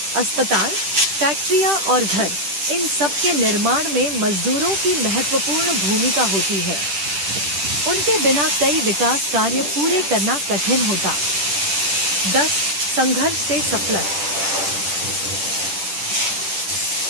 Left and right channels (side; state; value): left; late; 10 ms